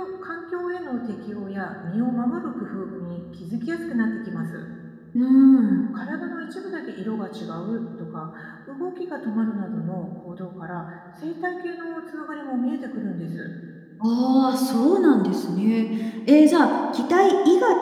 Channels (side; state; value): both; identical; correlation 1.00